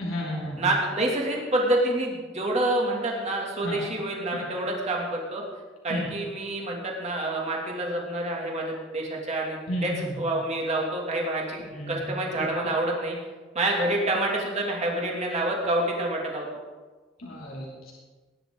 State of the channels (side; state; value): both; normal; correlation 0.32